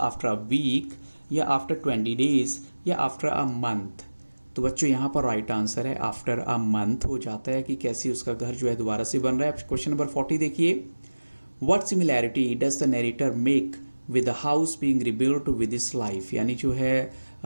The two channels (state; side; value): inverted; both; correlation -1.00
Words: a week, या आफ्टर 20 डेज, या आफ्टर अ मंथ। तो बच्चों यहाँ पर राइट आंसर है आफ्टर अ मंथ हो जाता है, कि कैसे उसका घर जो है दोबारा से बन रहा है। क्वेश्चन नंबर 40 देखिए, what similarity does the narrator make with the house being rebuilt with his life, यानी जो है